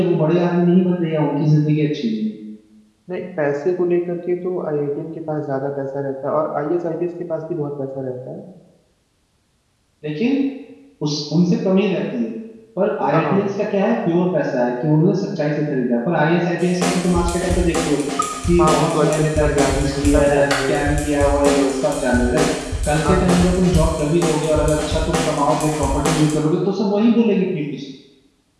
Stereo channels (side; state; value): both; identical; correlation 1.00